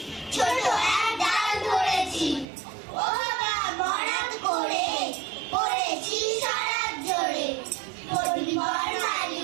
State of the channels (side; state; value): left; drops out; at 2.5 s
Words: ছোট এক ডাল ধরেছি। ও বাবা মরাদ করে পড়েছি সারাত জোরে। পরিবার